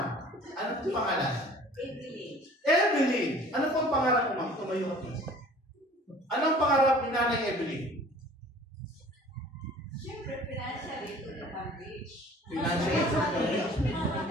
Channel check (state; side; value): normal; both; correlation 0.49